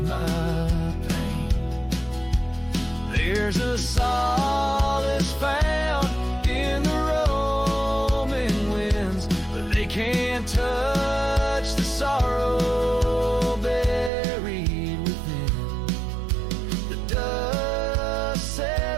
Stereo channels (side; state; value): left; drops out; at 14.1 s